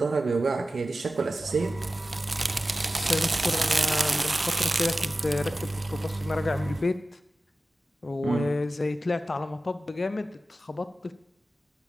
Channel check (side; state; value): both; normal; correlation 0.95